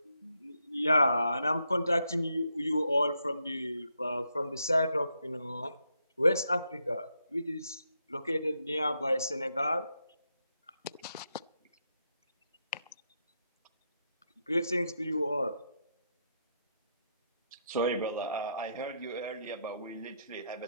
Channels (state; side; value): inverted; both; correlation -0.80